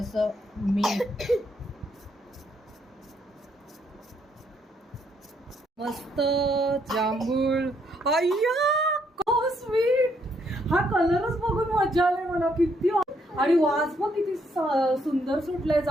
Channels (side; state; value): both; normal; correlation 0.72